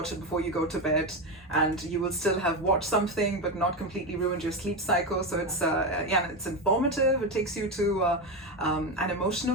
it before you go to bed, and you will still have watched something but not completely ruined your sleep cycle. So it's it's informative. It takes you to an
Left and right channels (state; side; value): normal; both; correlation 0.14